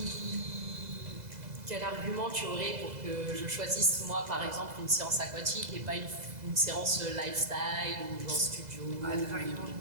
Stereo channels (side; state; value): left; late; 2.0 ms